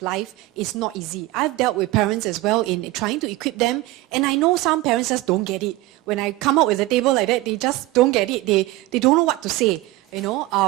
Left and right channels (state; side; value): quieter; left; 18.3 dB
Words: is not easy. I've dealt with parents as well in trying to equip them, and I know some parents just don't get it. When I come up with a table like that, they just don't get it. They don't know what to say, you